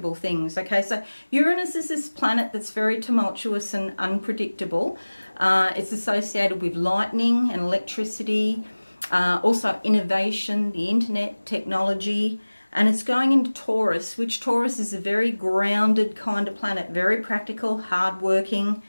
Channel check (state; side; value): inverted; both; correlation -1.00